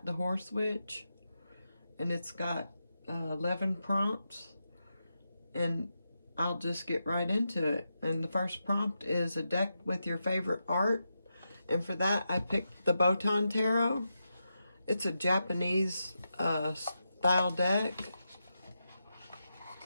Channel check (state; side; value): inverted; both; correlation -0.87